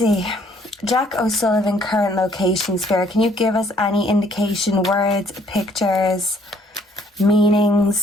Jacko'sullivan, current location, Spirit. Can you give us any indication, words, pictures,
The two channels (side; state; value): both; normal; correlation 0.62